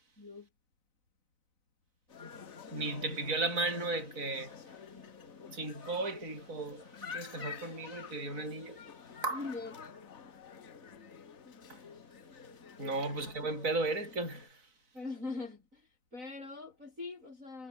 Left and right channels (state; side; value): late; left; 4.0 ms